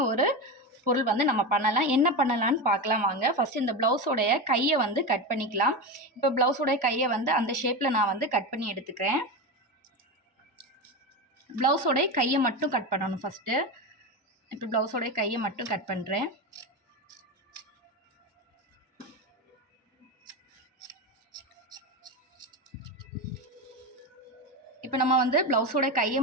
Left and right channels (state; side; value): normal; both; correlation 0.19